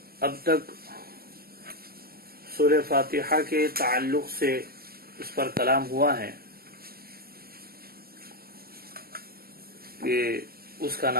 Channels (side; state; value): left; late; 0.45 ms